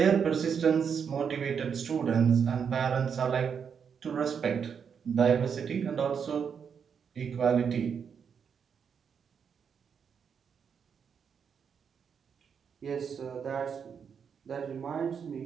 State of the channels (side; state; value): left; quieter; 6.9 dB